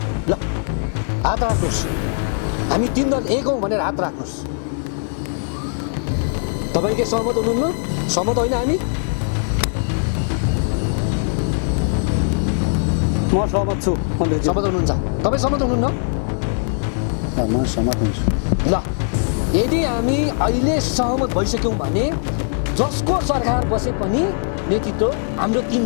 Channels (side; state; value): right; silent; digital silence